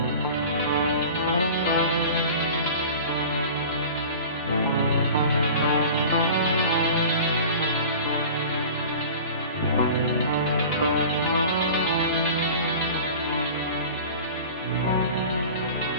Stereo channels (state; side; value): inverted; both; correlation -0.38